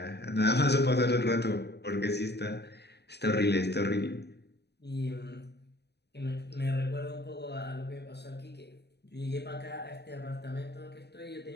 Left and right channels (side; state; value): right; late; 0.48 ms